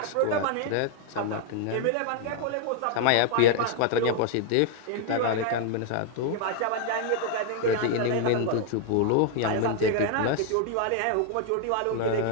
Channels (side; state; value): both; different; correlation 0.00